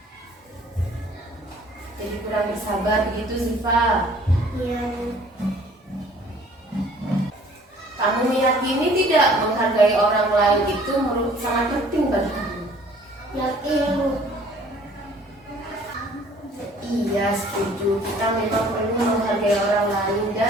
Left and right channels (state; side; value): normal; both; correlation 0.54